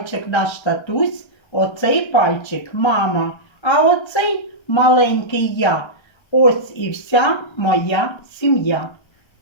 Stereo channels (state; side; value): late; right; 1.3 ms